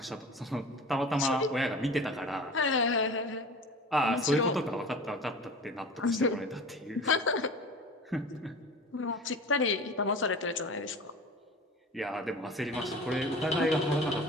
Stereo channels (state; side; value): normal; both; correlation 0.37